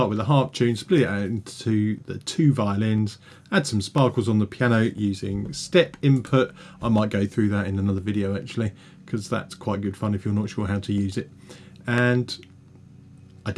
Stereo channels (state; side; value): identical; both; correlation 1.00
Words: with a harp tune, split it out into the 2 violins, add some sparkles on the piano using step input. I might go through that in another video actually, because that's quite good fun if you're not sure how to use it. And I